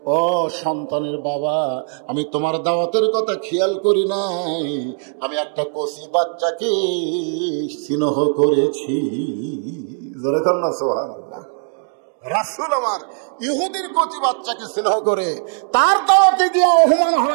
ও সন্তানের বাবা, আমি তোমার দাওয়াতের কথা খেয়াল করি নাই, আমি একটা কচি বাচ্চাকে স্নেহ করেছি। জোরে কর না সুবহানাল্লাহ। রাসূল আমার ইহুদির কচি বাচ্চাকে স্নেহ করে তার দাওয়াতে গিয়ে অপমান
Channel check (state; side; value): silent; left; digital silence